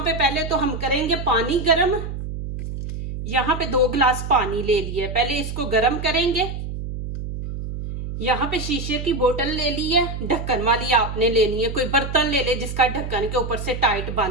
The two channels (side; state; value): right; noise; hum, 6 dB below the sound